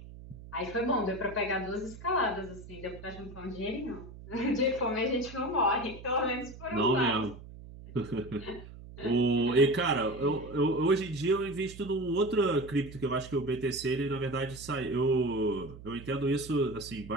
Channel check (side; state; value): right; noise; hum, 15 dB below the sound